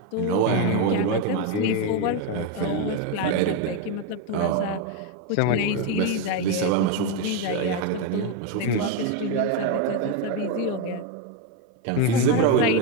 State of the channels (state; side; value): different; both; correlation 0.03